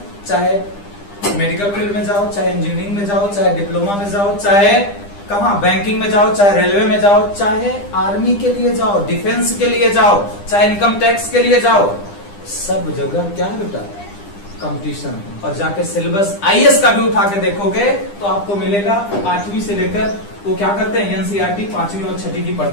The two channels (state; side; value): late; right; 9.9 ms